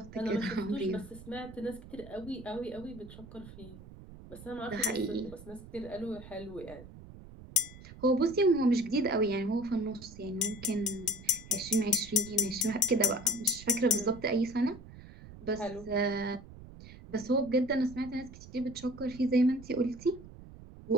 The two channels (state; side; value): noise; right; rumble, 17 dB below the sound